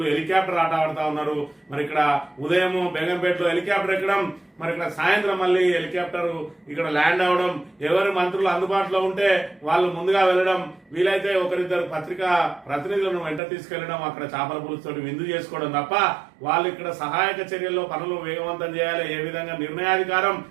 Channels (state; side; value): drops out; left; at 13.4 s